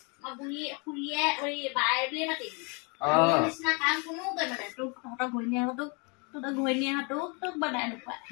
মই বুঢ়ী খুৰীয়ে বাই বুলিয়ে মাতিবি নিচিনা কাম কোনো কৰিব মানে তোক তহঁতৰ ঘৈণীয়েহঁতোক তোক বনাই নোপোৱা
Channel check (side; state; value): right; quieter; 33.0 dB